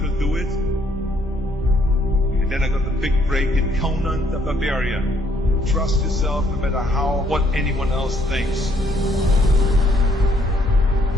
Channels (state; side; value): normal; both; correlation 0.68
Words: do it. And then I got the big break in Conan the Barbarian. Trust yourself no matter what anyone else thinks.